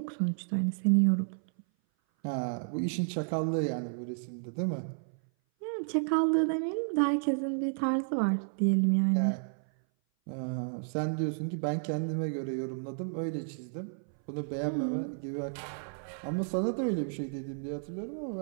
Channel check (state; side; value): silent; left; 56 dB below the other